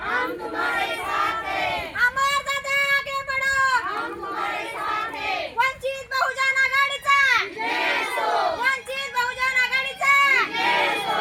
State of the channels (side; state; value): both; identical; correlation 1.00